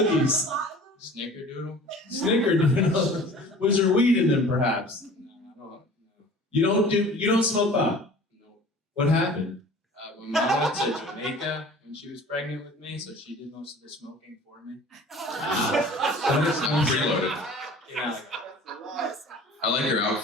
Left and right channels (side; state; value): both; normal; correlation 0.45